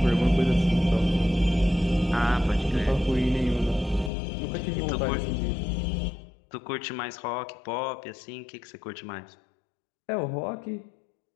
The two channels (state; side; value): drops out; right; at 4.1 s